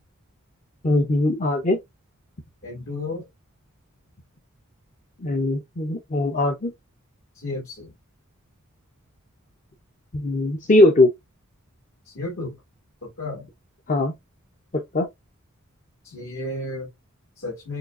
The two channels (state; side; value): normal; both; correlation 0.60